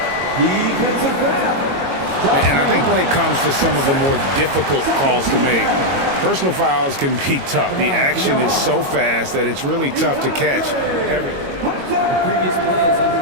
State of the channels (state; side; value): late; left; 22 ms